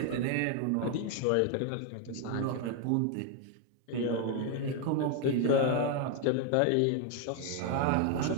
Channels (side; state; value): both; different; correlation 0.01